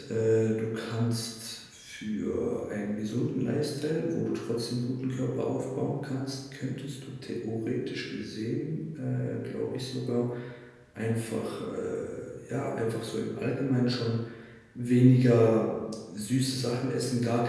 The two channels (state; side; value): identical; both; correlation 1.00